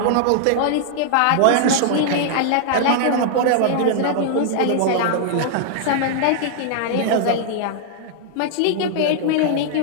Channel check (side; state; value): both; different; correlation -0.01